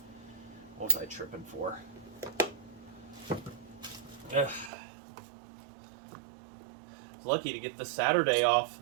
What was I tripping for? Ugh. I was lucky to get the Saturday off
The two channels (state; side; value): drops out; left; at 4.7 s